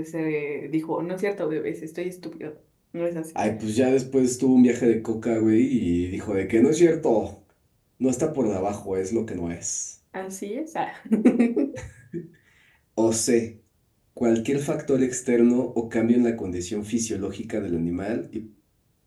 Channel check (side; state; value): both; identical; correlation 1.00